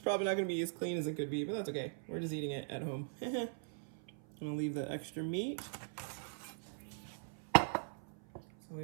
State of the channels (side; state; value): left; silent; 51 dB below the other